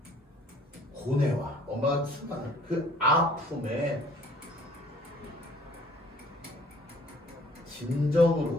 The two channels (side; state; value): both; normal; correlation 0.56